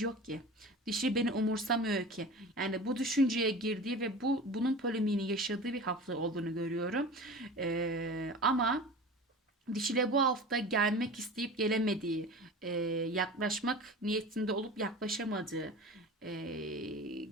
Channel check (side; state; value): both; normal; correlation 0.35